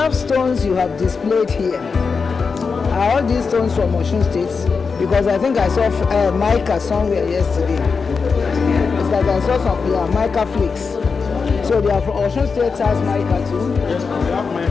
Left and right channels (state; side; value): quieter; right; 5.1 dB